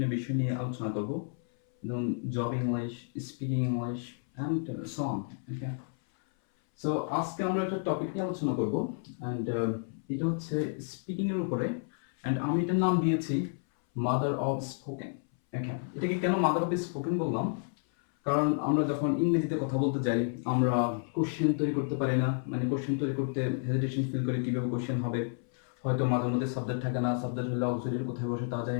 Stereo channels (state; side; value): silent; right; 57 dB below the other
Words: বিষয় নিয়ে আলোচনা করব, যেমন job English, speaking English and so on. Okay, so আজকে আমরা একটা টপিক নিয়ে আলোচনা করব অ্যান্ড এটা হচ্ছে স্পিকিং এর উপরে, অ্যান্ড আমি এটার নাম দিয়েছি মাদার অফ স্পোকেন। ওকে, এটাকে কেন মাদার অফ স্পোকেন বললাম? কারণ আমরা যখন ইংরেজিতে কথা বলতে যাই আমরা কোশ্চেন তৈরি করতে পারি না, মানে কোশ্চেন তৈরি করতে হেজিটেশন ফিল করি কিভাবে কোশ্চেন হবে, হয়তো মাঝে মধ্যে সাবজেক্ট থাকে না, সাবজেক্ট হলে অক্সিলারি কোথায় বসে তা